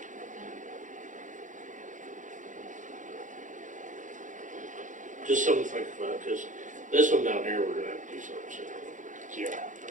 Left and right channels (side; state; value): left; late; 0.37 ms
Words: Just something to think about, cause this one down here, we're gonna have to do something soon.